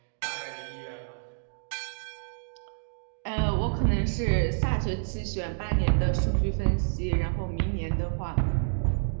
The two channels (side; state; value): left; silent; digital silence